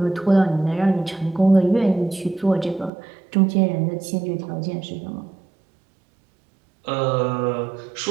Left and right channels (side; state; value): left; drops out; at 2.9 s